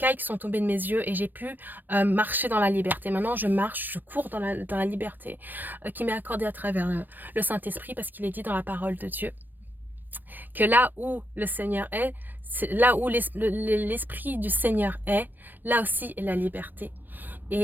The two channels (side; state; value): left; late; 0.088 ms